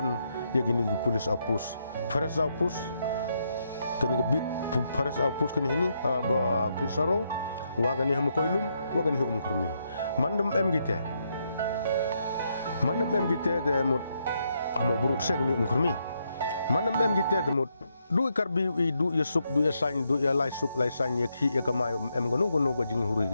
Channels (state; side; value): inverted; both; correlation -0.78